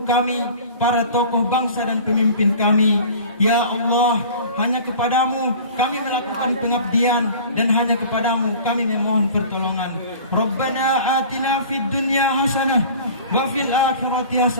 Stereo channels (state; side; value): inverted; both; correlation -0.42